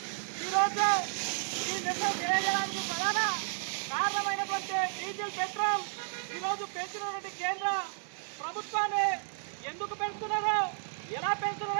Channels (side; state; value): left; silent; 56 dB below the other